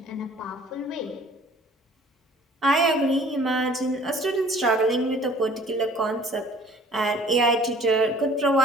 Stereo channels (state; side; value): normal; both; correlation 0.52